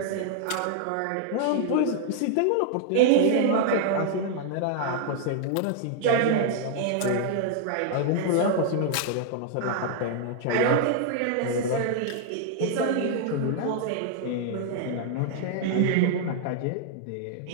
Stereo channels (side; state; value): both; different; correlation -0.01